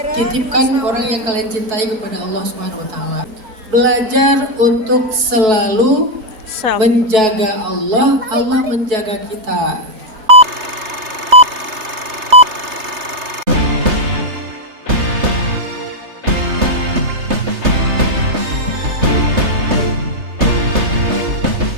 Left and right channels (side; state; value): left; late; 3.3 ms